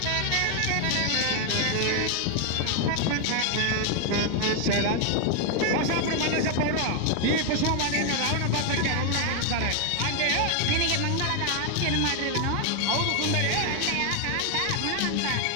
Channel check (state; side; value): different; both; correlation 0.00